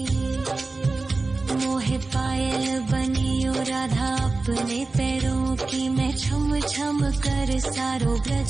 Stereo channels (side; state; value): left; quieter; 3.5 dB